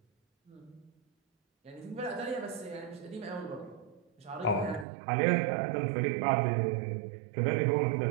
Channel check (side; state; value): left; drops out; at 4.9 s